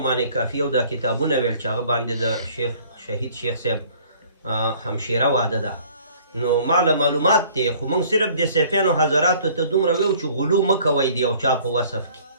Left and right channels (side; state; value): both; inverted; correlation -0.54